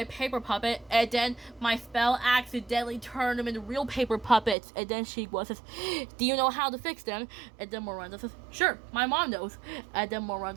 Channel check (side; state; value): left; drops out; at 4.5 s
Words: paper puppet, and then my spell accidentally turned them into real paper puppets," and then Shigwa says, "Do you know how to fix them?" And then Miranda says, "Sure, my mom knows," and then